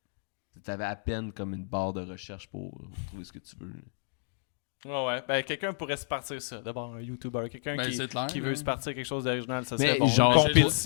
T'avais à peine comme une barre de recherche pour trouver ce que tu veux, là. Ouais. Ben, quelqu'un pourrait se partir ça. D'abord, un YouTuber. Quelqu'un Ben, c'est clair, qui veut hein. se partir quelque chose d'original, ça Mais serait bon. genre, Une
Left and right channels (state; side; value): silent; right; digital silence